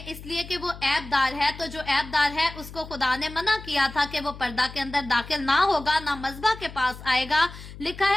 इसलिए कि वो ऐबदार है। तो जो ऐबदार है उसको खुदा ने मना किया था कि वो पर्दा के अंदर दाखिल ना होगा, ना मज़बा के पास आएगा। लिखा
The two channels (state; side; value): noise; left; hum, 14 dB below the sound